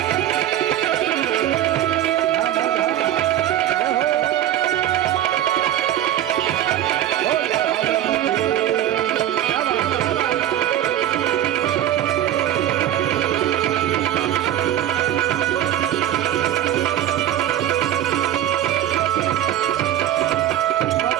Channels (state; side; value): quieter; left; 11.9 dB